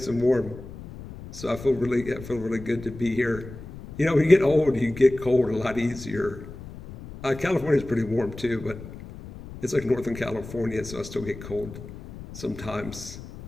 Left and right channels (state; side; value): noise; left; rumble, 13 dB below the sound